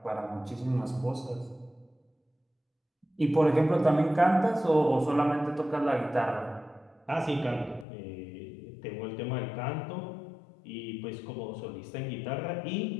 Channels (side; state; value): right; drops out; at 7.9 s